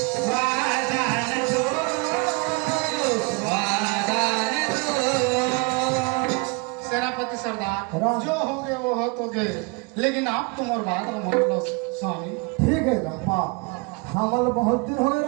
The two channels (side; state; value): left; quieter; 30.5 dB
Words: सेनापति सरदार, राम। जो हो गए वो हो तो गए, लेकिन आप तुम और बात न मान लो स्वामी। ठीक है गप्पा हमल बहुत दिन हो गए